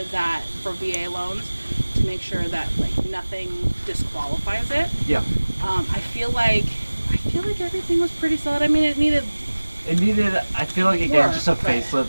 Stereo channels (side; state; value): both; inverted; correlation -1.00